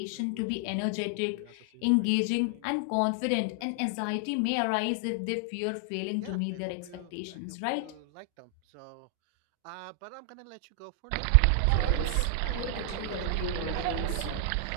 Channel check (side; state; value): both; different; correlation 0.00